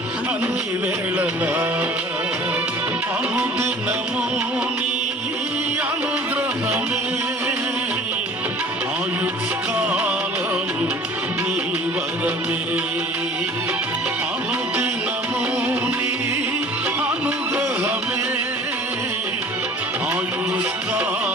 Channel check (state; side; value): normal; both; correlation 0.47